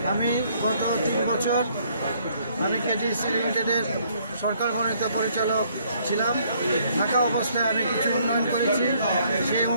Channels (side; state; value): both; inverted; correlation -0.65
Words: আমি গত 3 বছর আমি কেটিসি লিমিটেডের সরকার মনোনীত পরিচালক ছিলাম। থাকা অবস্থায় আমি কিছু উন্নয়ন করেছি। সেই